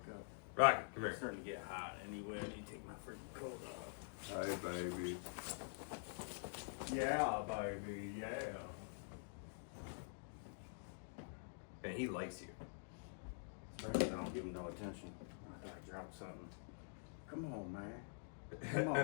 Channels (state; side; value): silent; right; digital silence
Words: up. Rocket, come It's here. starting to get hot anyway. I need to take my freaking coat off. Hi, baby. Yeah, baby, yeah. And he likes you. Especially if I don't give him no attention. I thought I dropped something. Come on, man. Come